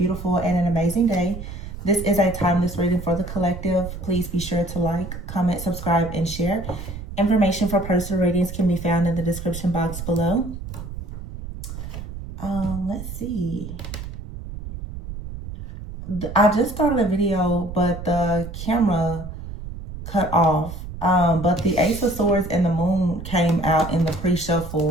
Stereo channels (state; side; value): noise; right; rumble, 10 dB below the sound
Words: and an amazing day. This is a timeless reading for the collective. Please be sure to like, comment, subscribe, and share. Information for personal readings can be found in the description box below. Let's see. I just started a video, but the camera cut off. But the Ace of Swords and the Moon came out in the